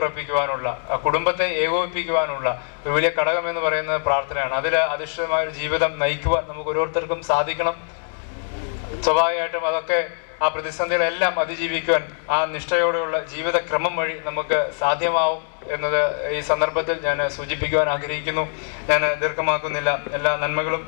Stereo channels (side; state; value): right; silent; 64 dB below the other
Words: കുടുംബത്തെ ഏകോപിപ്പിക്കുവാനുള്ള ഒരു വലിയ ഘടകം എന്ന് പറയുന്നത് പ്രാർത്ഥനയാണ്. അതിൽ അധിഷ്ഠിതമായ ഒരു ജീവിതം നയിക്കുവാൻ നമുക്ക് ഓരോരുത്തർക്കും സാധിക്കണം. സ്വാഭാവികമായിട്ടും അതൊക്കെ ആ പ്രതിസന്ധികളെല്ലാം അതിജീവിക്കുവാൻ ആ നിഷ്ഠയോടെയുള്ള ജീവിതക്രമം വഴി നമുക്ക് സാധ്യമാവും എന്നത് ഈ സന്ദർഭത്തിൽ ഞാൻ സൂചിപ്പിക്കുവാൻ ആഗ്രഹിക്കുന്നു. ഞാൻ ദീർഘമാക്കുന്നില്ല. എല്ലാ നന്മകളും